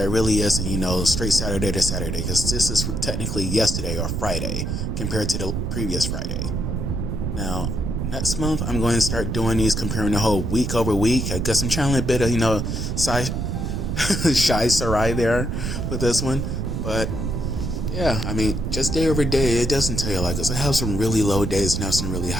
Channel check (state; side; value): noise; right; rumble, 2 dB below the sound